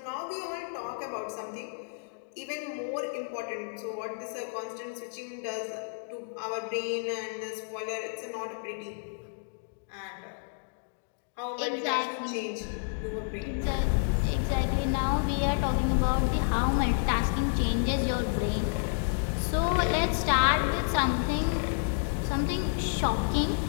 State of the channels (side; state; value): right; silent; digital silence